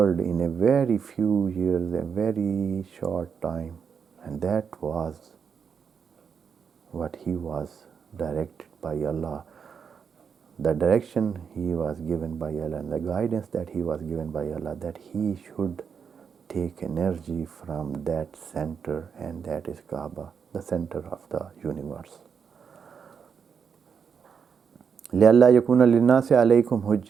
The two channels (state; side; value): quieter; left; 6.6 dB